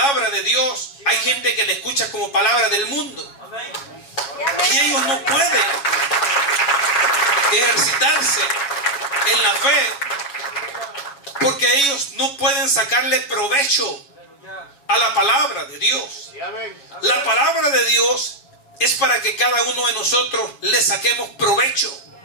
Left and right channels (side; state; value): right; late; 7.1 ms